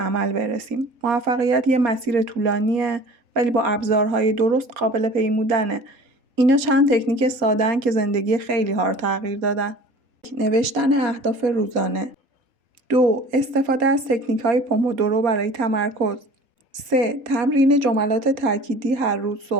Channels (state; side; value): late; left; 4.2 ms